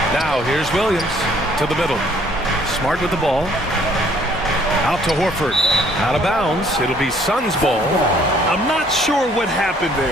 Now here's Williams to the middle. Smart with the ball. Out to Horford. Out of bounds. It'll be Suns ball. I'm not sure what happened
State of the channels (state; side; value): normal; both; correlation 0.61